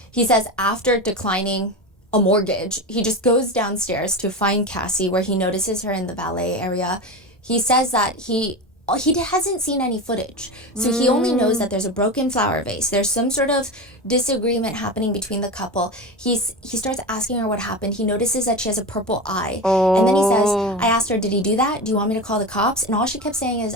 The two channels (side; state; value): both; normal; correlation 0.24